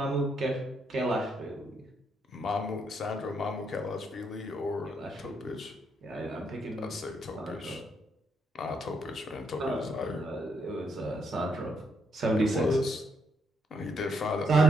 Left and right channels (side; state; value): both; normal; correlation 0.76